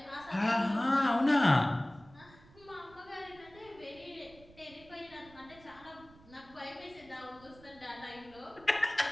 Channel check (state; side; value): noise; right; rumble, 24 dB below the sound